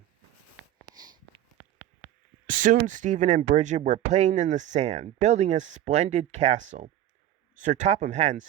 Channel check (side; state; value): left; quieter; 12.4 dB